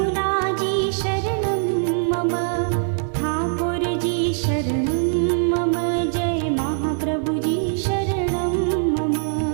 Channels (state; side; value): silent; left; 55 dB below the other